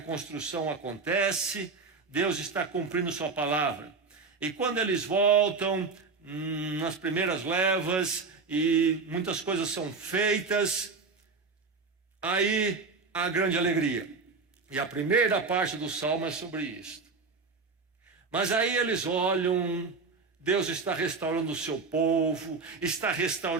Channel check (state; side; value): quieter; left; 4.5 dB